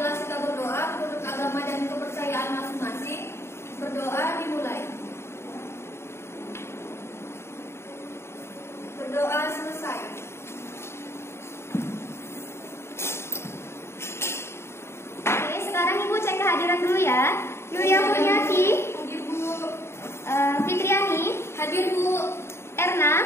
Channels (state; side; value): late; right; 0.12 ms